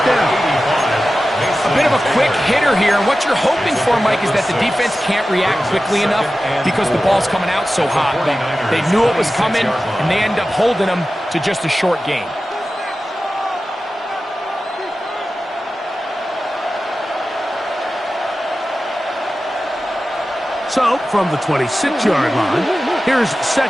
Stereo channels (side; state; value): both; normal; correlation 0.94